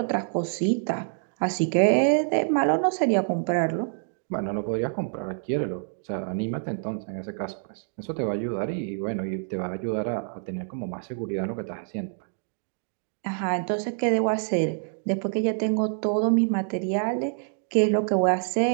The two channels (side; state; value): left; silent; digital silence